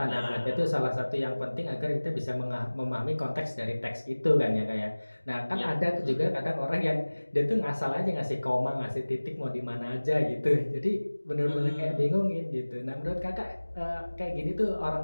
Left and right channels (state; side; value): inverted; both; correlation -1.00